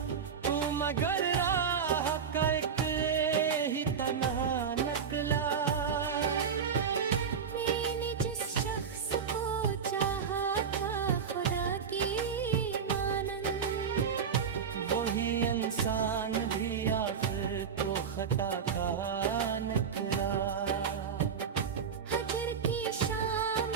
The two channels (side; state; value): left; quieter; 6.7 dB